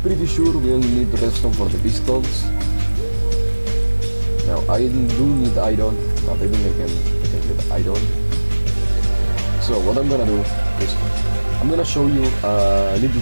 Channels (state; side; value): inverted; both; correlation -1.00